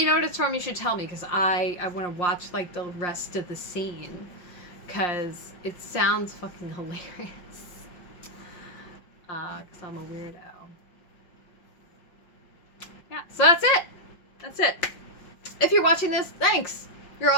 know what it's from, you should tell me, because I want to watch like the rest of the scene, because it sounds fucking hilarious. Because I'm a weirdo. Yeah, so that's it. That's it. If you're watching this, thanks. You're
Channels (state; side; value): late; right; 5.7 ms